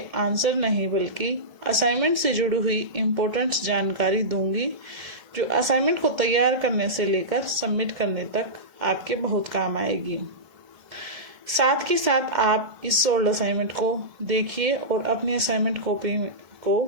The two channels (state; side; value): late; left; 1.7 ms